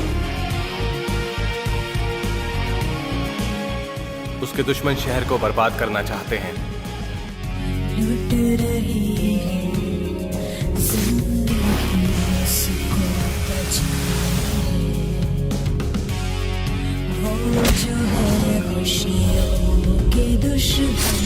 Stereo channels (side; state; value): both; identical; correlation 1.00